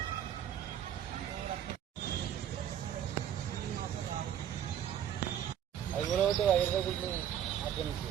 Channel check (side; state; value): left; quieter; 10.0 dB